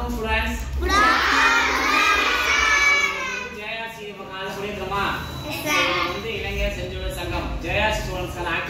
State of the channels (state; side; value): identical; both; correlation 1.00